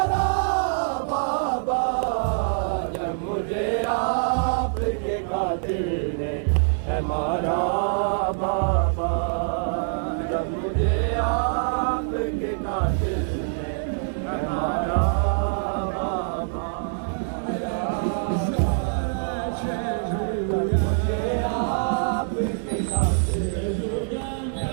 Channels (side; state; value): left; silent; 62 dB below the other